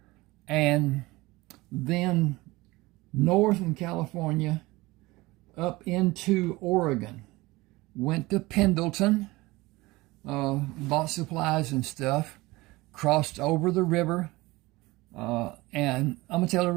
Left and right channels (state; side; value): quieter; left; 21.0 dB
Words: and then north in California up into Oregon. Went to Pendleton, bought supplies and stuff, crossed over the river, and Umatilla